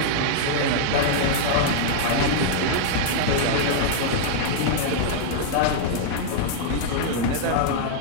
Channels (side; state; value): both; different; correlation -0.01